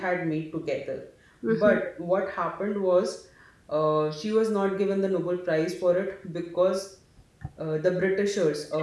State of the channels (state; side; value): identical; both; correlation 1.00